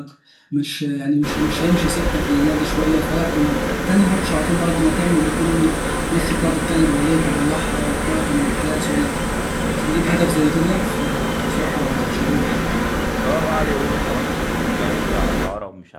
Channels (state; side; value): identical; both; correlation 1.00